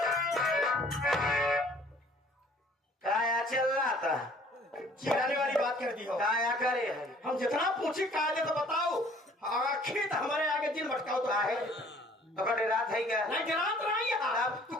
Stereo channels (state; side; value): normal; both; correlation 0.55